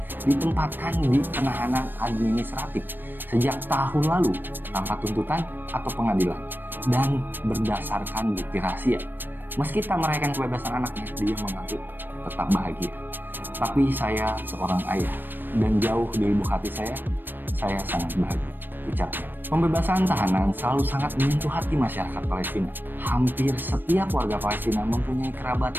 ditempatkan di penahanan administratif sejak tahun lalu tanpa tuntutan atau pengadilan dan berdasarkan bukti rahasia. Meski tak merayakan kebebasan anaknya, dia mengaku tetap bahagia. Tapi saya seorang ayah dan jauh di lubuk hati saya sangat bahagia, ucapnya. Pembebasan tahanan selalu sangat menyentuh hati masyarakat Palestina. Hampir setiap warga Palestina mempunyai kerabat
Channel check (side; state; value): left; late; 0.094 ms